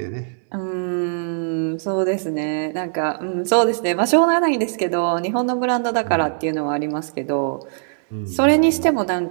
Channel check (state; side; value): silent; left; digital silence